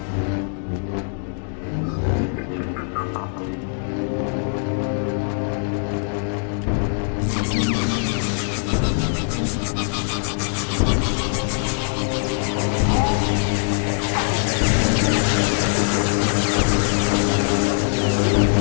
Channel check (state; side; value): silent; right; 58 dB below the other